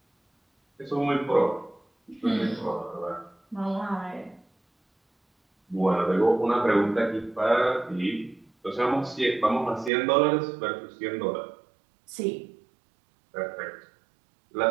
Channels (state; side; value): drops out; left; at 9.9 s